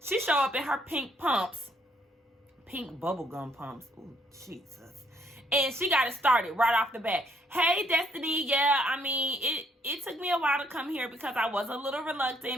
she show up in her pink pumps. Pink bubblegum pumps. Ooh, Jesus. And she got it started right off the bat. Hey, Destiny. Yeah, I mean, it took me a while to come here because I was a little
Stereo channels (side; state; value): both; normal; correlation 0.68